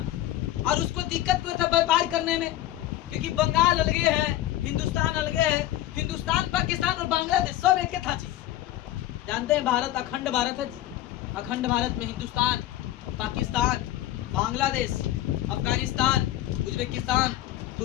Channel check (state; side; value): quieter; right; 14.0 dB